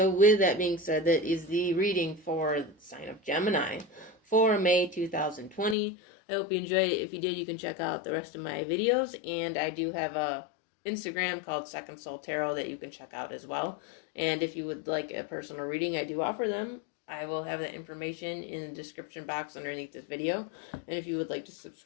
with that being said, that is the reading for the sign of Gemini for May 2020. I hope you enjoyed it. If you did, you can check out the rest of my videos. And I do have a Instagram called Second Soul Tarot that you can check out as well. And if you would like a personal reading, I do offer them. I will have that information in the description box underneath this video. And if you would like to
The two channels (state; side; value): drops out; right; at 5.8 s